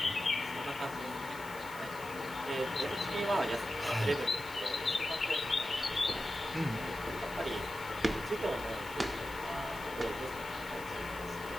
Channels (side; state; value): right; noise; hiss, 16 dB below the sound